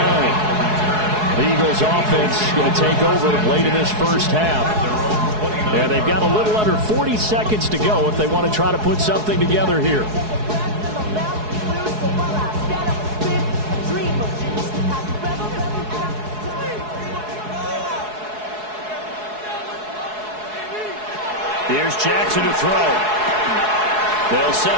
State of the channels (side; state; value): left; late; 4.7 ms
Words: The Eagles offense going to take over late in this first half. And they've got a little under 40 seconds to go if they want to try to put something together here. Here's Jackson to throw. They'll set